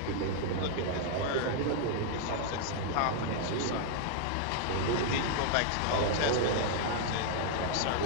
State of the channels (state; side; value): different; both; correlation 0.00